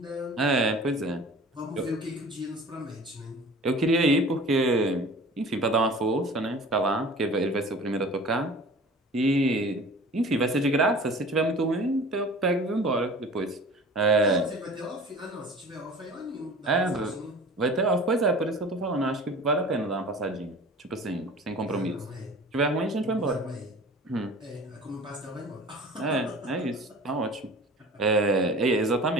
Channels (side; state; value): both; normal; correlation 0.42